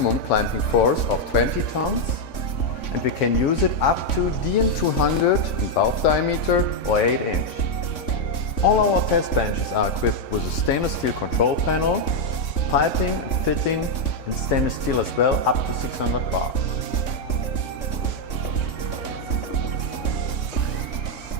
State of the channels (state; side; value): late; right; 3.6 ms